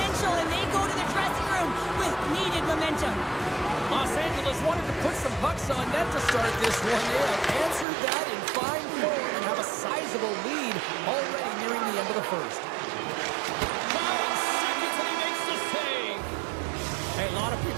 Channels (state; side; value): drops out; left; at 7.9 s